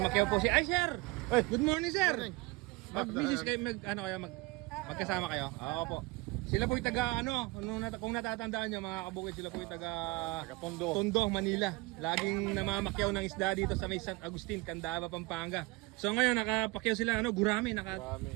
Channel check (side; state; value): left; quieter; 23.0 dB